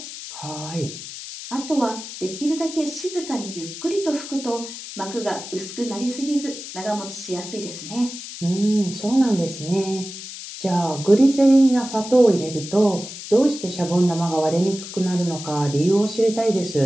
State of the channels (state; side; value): noise; left; hiss, 11 dB below the sound